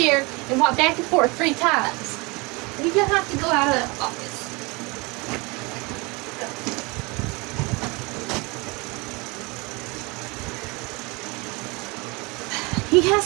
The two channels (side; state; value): left; quieter; 26.8 dB